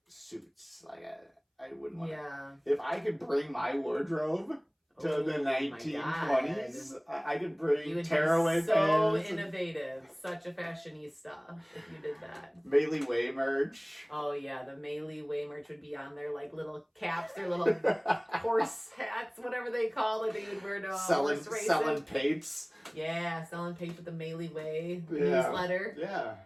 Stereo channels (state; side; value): identical; both; correlation 1.00